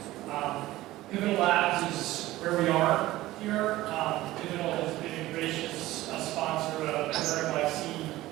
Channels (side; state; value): left; quieter; 16.7 dB